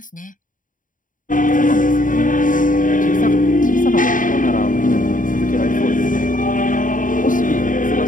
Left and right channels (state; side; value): late; right; 0.38 ms